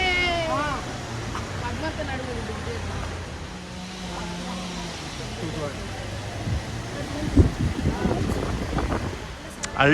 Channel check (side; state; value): both; identical; correlation 1.00